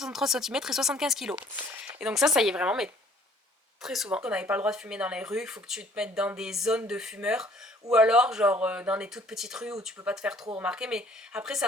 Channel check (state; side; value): normal; both; correlation 0.57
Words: cm et 75 kg. Et donc ça y est vraiment, mais très souvent. On n'avait pas le droit de fumer dans les rues, il faut que tu te mettes dans des zones de fumeurs. Ou alors, genre, dans des toutes petites rues où tu peux pas te faire trop remarquer. Mais après,